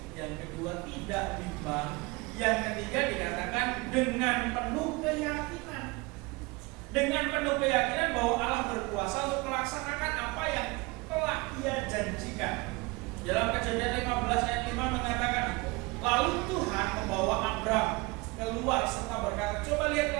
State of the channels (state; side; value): quieter; left; 24.6 dB